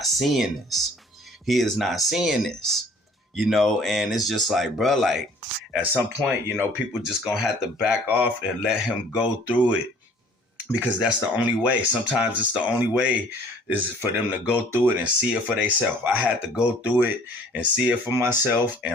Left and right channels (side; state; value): both; normal; correlation 0.54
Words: seeing this. He is not seeing this. You know, and it's just like, bro, like at some point, you know, people just gonna have to back off and let him go through it. Because that's the only way. Sometimes it's the only way is for them to go through it and see it for themselves. I had to go through it and see it for myself